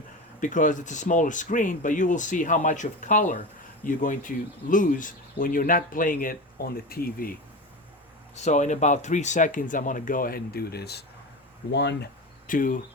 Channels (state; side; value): normal; both; correlation 0.25